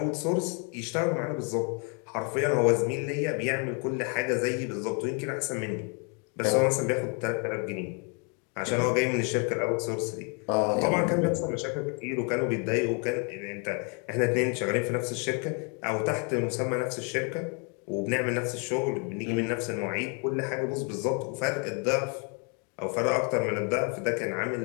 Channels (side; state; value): right; quieter; 36.5 dB